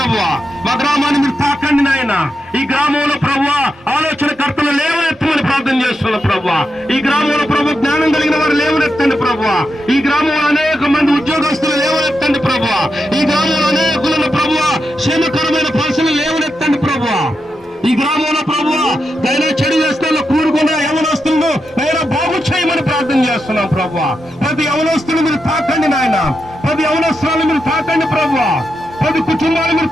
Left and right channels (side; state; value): both; normal; correlation 0.86